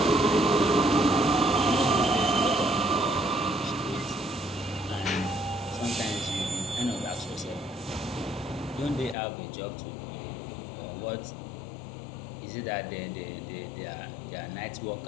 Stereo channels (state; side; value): drops out; right; at 9.2 s